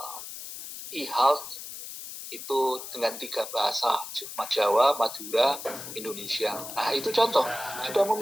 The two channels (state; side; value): noise; left; hiss, 10 dB below the sound